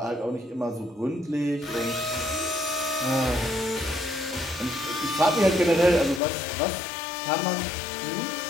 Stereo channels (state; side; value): drops out; right; at 6.2 s